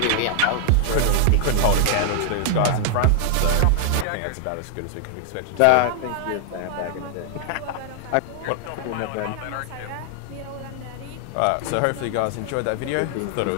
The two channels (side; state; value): both; different; correlation 0.00